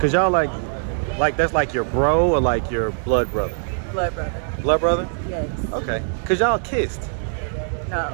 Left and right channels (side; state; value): left; silent; digital silence